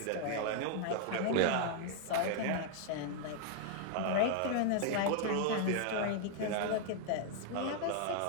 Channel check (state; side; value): different; both; correlation -0.01